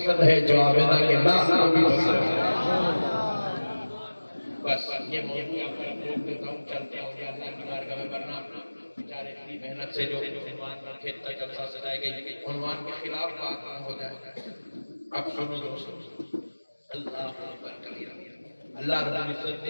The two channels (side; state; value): both; inverted; correlation -1.00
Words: ہے، جو عابدہ کے ناس کو بھی پسند ہے۔ بس یہ موضوع آپ پر روک دیتا ہوں، چلتے ہیں اور اللہ کی بارگاہ میں ورنہ بیچارے اتنی محنت سے جو عنوان پر کھیلتا جلسہ سجائے گئی، عنوان کے خلاف بات نہ ہو جائے۔ اب سنو دوستو، اللہ اکبر کبیرہ، اللہ رب العزت